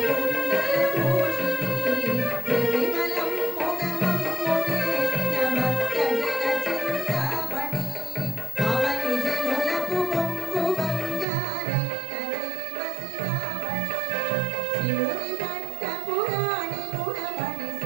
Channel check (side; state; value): left; drops out; at 11.2 s